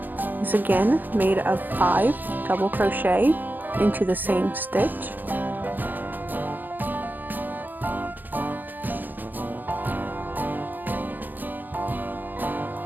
is again made of 5 double crochet into the same stitch.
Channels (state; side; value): late; left; 0.087 ms